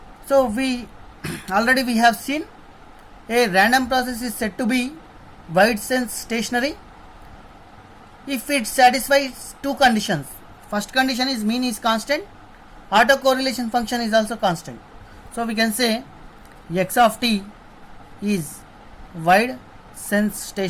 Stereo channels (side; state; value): both; identical; correlation 1.00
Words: So we already we have seen a random process is said to be wide sense stationary if it satisfies two conditions. First condition is mean is constant, autocorrelation function is also constant. So we can say x of t is wide sense